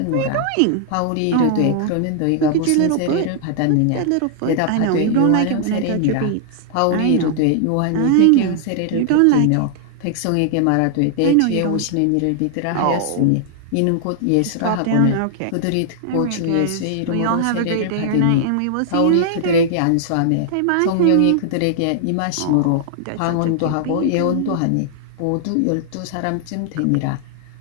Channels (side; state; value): both; different; correlation -0.01